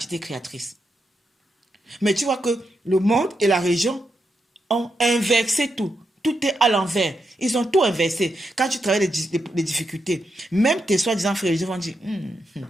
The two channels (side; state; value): both; normal; correlation 0.84